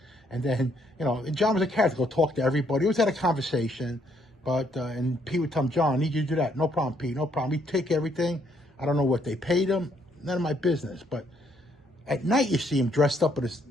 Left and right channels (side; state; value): both; normal; correlation 0.70